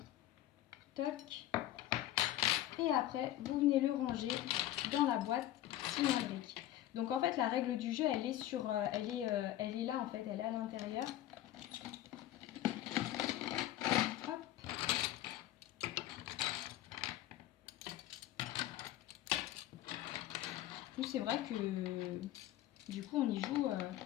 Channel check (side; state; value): right; quieter; 13.7 dB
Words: toc. Et après, vous venez le ranger dans la boîte cylindrique. Donc en fait, la règle du jeu, elle est elle est là en fait, elle est à l'intérieur. Hop. C'est vrai que du coup, on y joue